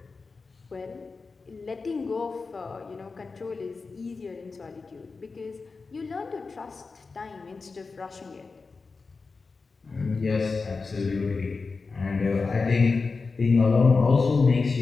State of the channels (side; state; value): right; quieter; 4.3 dB